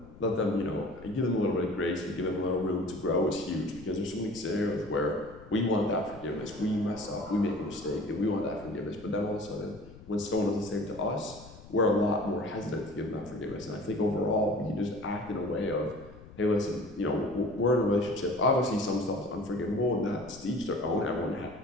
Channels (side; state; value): left; noise; rumble, 18 dB below the sound